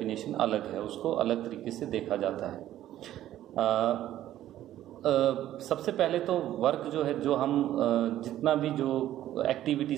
अलग है, उसको अलग तरीके से देखा जाता है। सबसे पहले तो वर्क जो है, जो हम जितना भी जो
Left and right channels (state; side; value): quieter; left; 12.9 dB